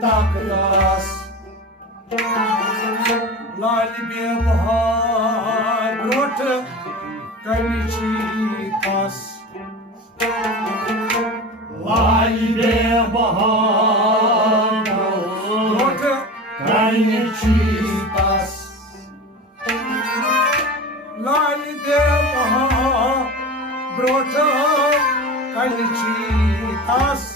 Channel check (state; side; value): normal; both; correlation 0.30